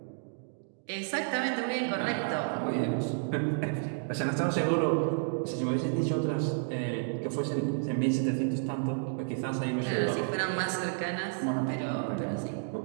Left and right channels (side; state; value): left; silent; digital silence